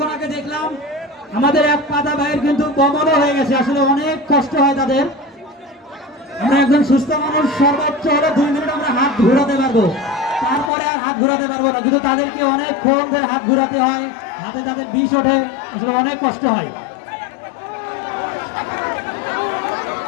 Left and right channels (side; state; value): right; drops out; at 10.7 s